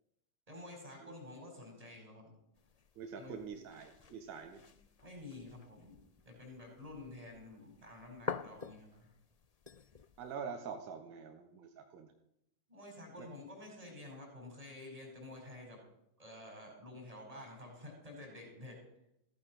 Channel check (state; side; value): late; left; 1.8 ms